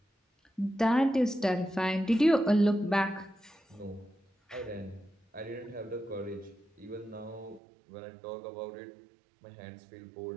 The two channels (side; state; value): left; drops out; at 7.6 s